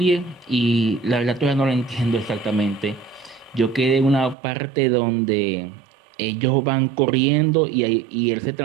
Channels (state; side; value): drops out; left; at 4.4 s